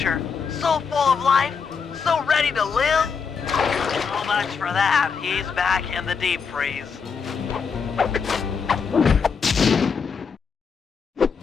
So full of life, so ready to live. So much for that. He's back in the deep freeze.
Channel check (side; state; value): right; quieter; 5.9 dB